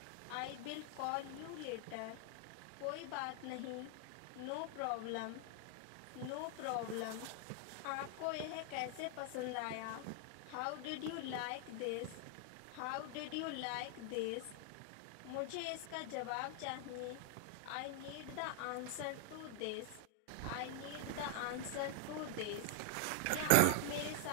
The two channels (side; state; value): both; different; correlation 0.00